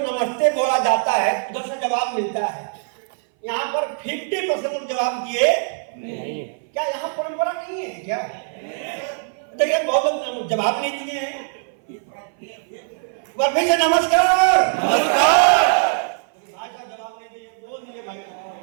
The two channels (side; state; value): left; silent; 59 dB below the other